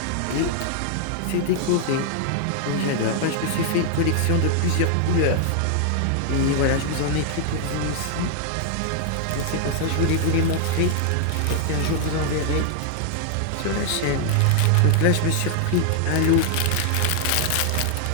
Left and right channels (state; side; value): different; both; correlation 0.00